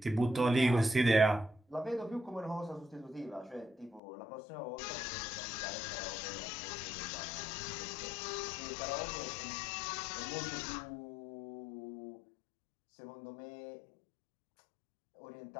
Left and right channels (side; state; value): right; drops out; at 4.0 s